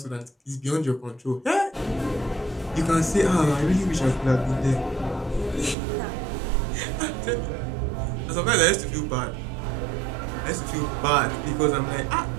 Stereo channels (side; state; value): left; drops out; at 5.8 s